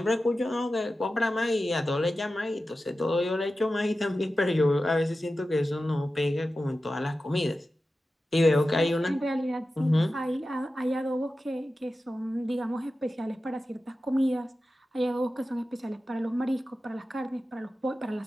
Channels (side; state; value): both; normal; correlation 0.93